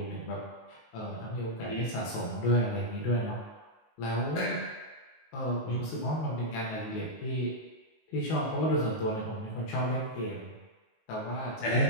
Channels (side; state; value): right; late; 19 ms